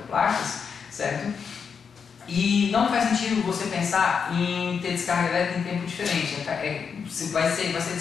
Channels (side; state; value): right; quieter; 6.3 dB